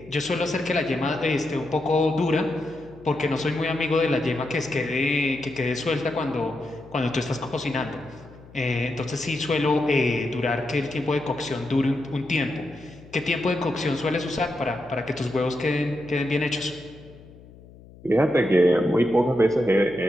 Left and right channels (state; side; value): noise; left; hum, 21 dB below the sound